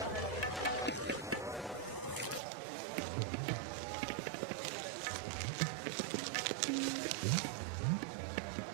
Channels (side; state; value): left; drops out; at 2.4 s